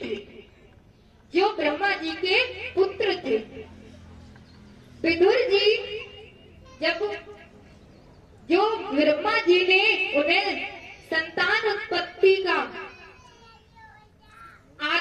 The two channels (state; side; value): identical; both; correlation 1.00